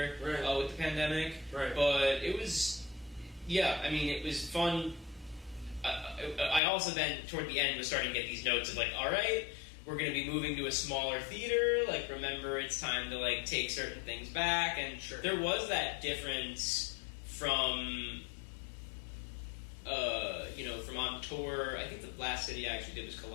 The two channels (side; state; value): right; drops out; at 6.6 s